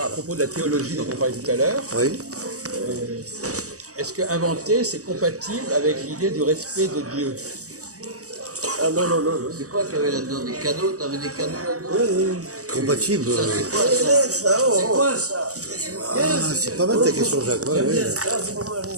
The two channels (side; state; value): left; late; 0.66 ms